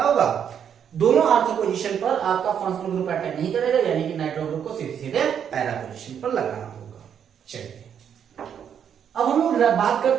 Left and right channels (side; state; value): left; quieter; 8.4 dB